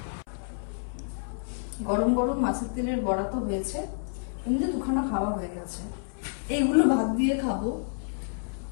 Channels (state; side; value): silent; right; 59 dB below the other